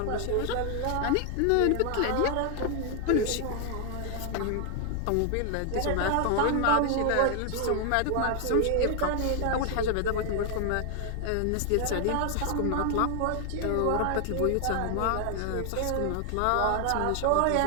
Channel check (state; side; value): different; both; correlation 0.00